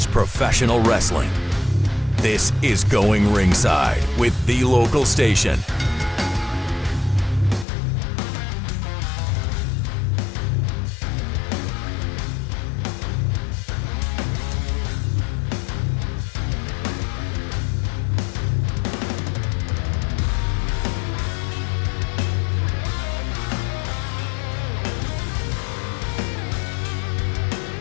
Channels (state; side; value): drops out; right; at 7.7 s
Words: professional wrestling. This is Going Ringside with The Local Station.